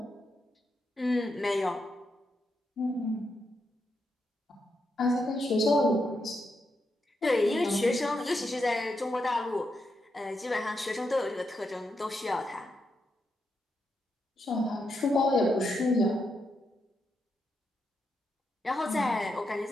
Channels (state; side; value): normal; both; correlation 0.83